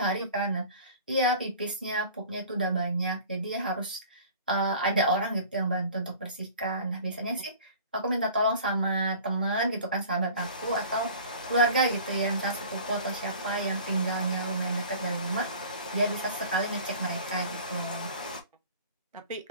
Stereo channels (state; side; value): inverted; both; correlation -0.44